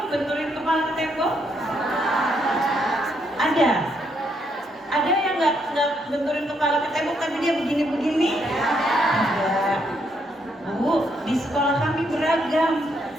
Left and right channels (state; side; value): normal; both; correlation 0.74